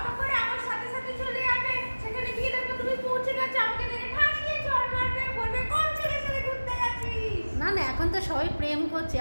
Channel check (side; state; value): both; inverted; correlation -1.00